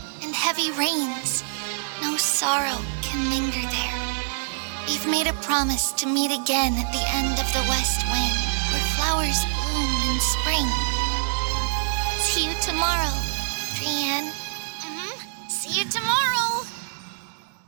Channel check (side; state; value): left; silent; digital silence